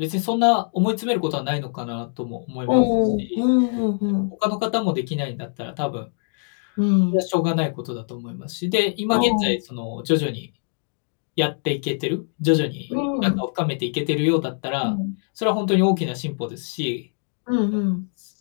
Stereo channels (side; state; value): right; silent; 63 dB below the other